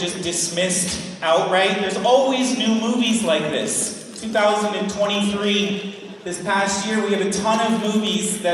dismissed outright. There's always new movies like this. 2023, this past year, we have a ton of movies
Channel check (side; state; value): both; identical; correlation 1.00